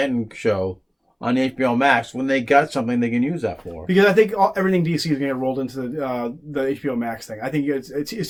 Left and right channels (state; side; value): identical; both; correlation 1.00